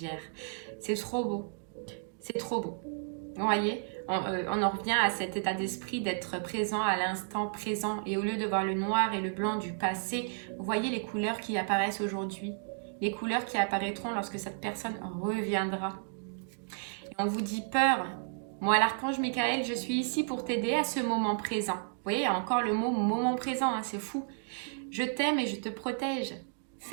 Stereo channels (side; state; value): left; silent; digital silence